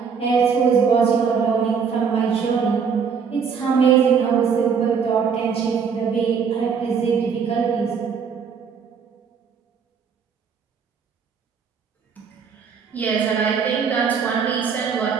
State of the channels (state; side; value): quieter; left; 6.4 dB